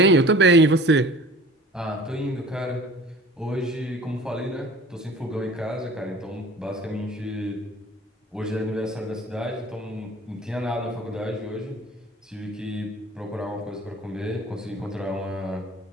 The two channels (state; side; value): normal; both; correlation 0.44